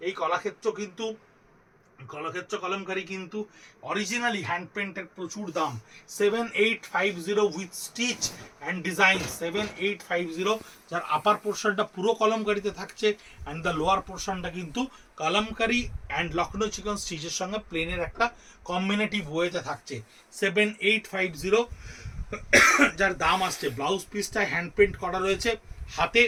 এই কলাক্ষেত্র কলমকারি কিন্তু অরিজিনালি হ্যান্ড পেন্টের প্রচুর দাম। 7850 উইথ স্টিচ অ্যান্ড ডিজাইন, 7850, যার আপার পোর্শনটা পুরো কলমকারিতে থাকছে, অ্যান্ড দ্য লোয়ার পোর্শনটা কিন্তু কলমকারি অ্যান্ড লখনৌ চিকন স্টিচের সঙ্গে প্লেনের একটা কম্বিনেটিভ ওয়েতে থাকছে। 7850, যার দাম আসছে। ব্লাউজ পিসটা হ্যান্ড পেন্ট করা রয়েছে হাতে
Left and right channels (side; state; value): both; identical; correlation 1.00